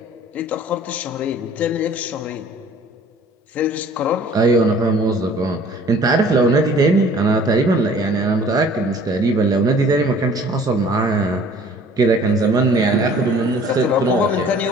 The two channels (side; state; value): both; normal; correlation 0.51